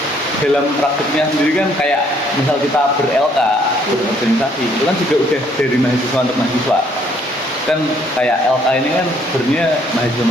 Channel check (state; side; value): normal; both; correlation 0.65